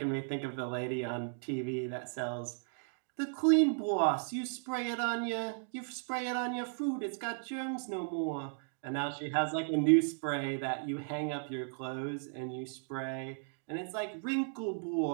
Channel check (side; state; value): left; silent; digital silence